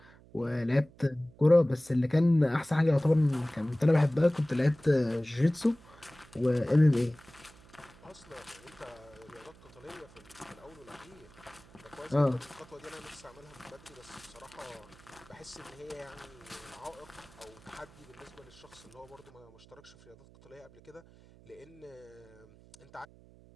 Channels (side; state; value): right; noise; hum, 24 dB below the sound